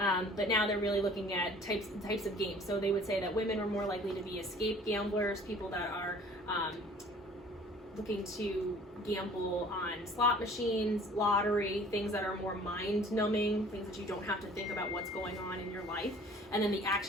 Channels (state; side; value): normal; both; correlation 0.51